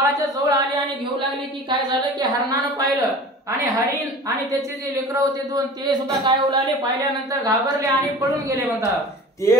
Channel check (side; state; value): both; normal; correlation 0.40